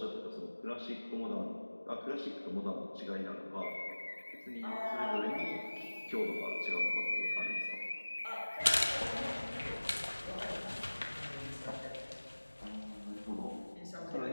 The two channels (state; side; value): inverted; both; correlation -1.00